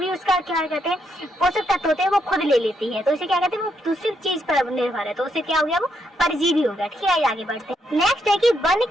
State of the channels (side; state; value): both; normal; correlation 0.77